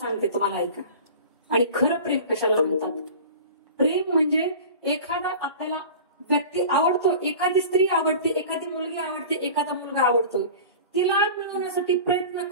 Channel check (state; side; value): inverted; both; correlation -0.38